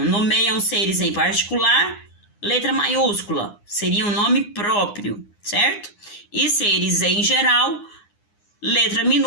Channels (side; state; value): right; late; 9.8 ms